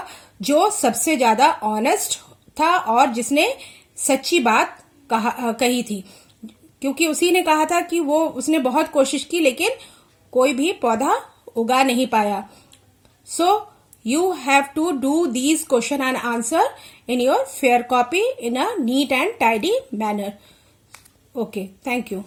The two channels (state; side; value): identical; both; correlation 1.00